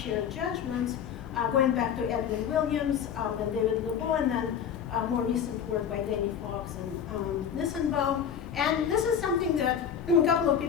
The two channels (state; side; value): quieter; right; 8.1 dB